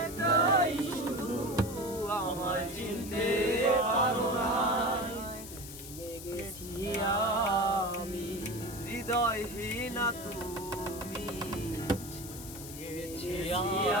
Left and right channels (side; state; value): left; noise; hiss, 12 dB below the sound